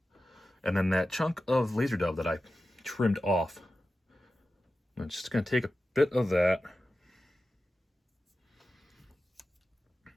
And then that chunk of laser dove that I trimmed off, I'm just going to take a bit of that,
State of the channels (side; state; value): both; normal; correlation 0.93